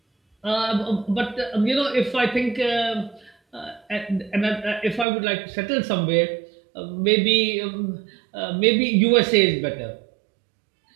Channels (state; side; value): drops out; left; at 5.1 s